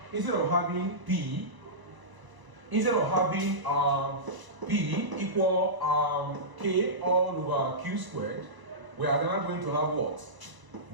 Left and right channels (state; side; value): late; left; 1.0 ms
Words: instead of having P, instead of having P equal K all over Q squared, we are now going to have what?